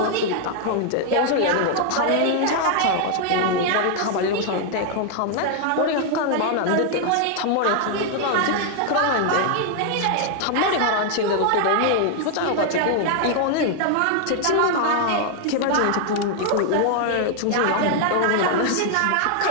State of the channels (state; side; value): different; both; correlation 0.00